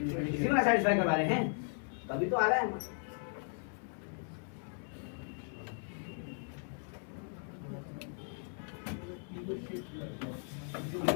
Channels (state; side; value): silent; right; 53 dB below the other